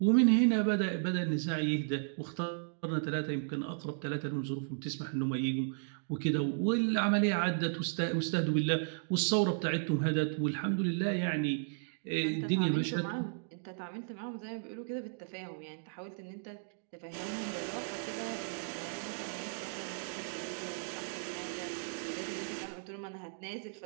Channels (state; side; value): silent; left; digital silence